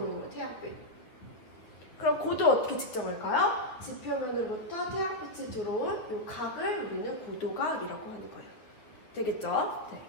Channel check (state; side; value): late; right; 9.3 ms